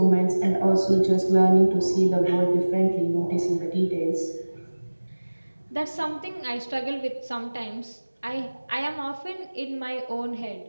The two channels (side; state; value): both; inverted; correlation -1.00